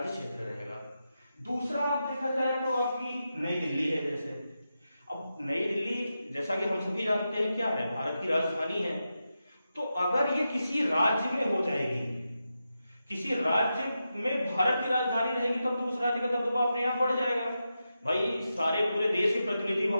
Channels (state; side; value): inverted; both; correlation -0.89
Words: क्षेत्र रहेगा। दूसरा आप देखा जाए तो आपकी नई दिल्ली है। जैसे अब नई दिल्ली जैसा कि हम सभी जानते हैं क्या है, भारत की राजधानी है, तो अगर ये किसी राज्य में हो जाएगी, किसी राज्य में भारत की राजधानी रहेगी, तब तो उस राज्य का दबदबा अपने आप बढ़ जाएगा। भाई सारे पूरे देश के प्रतिनिधि